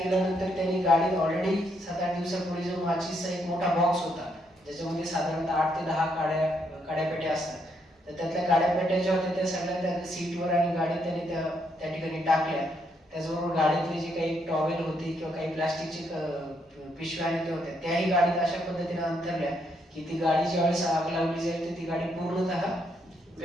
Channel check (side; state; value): both; normal; correlation 0.75